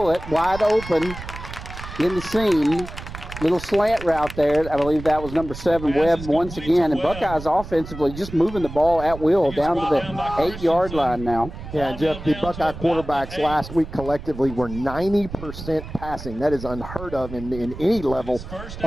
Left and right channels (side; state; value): right; noise; rumble, 12 dB below the sound